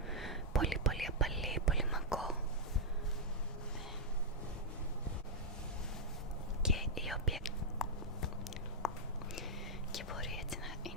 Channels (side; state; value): both; normal; correlation -0.05